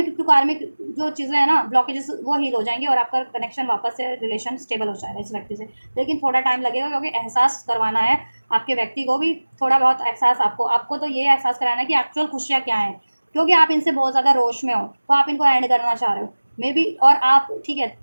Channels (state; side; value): inverted; both; correlation -1.00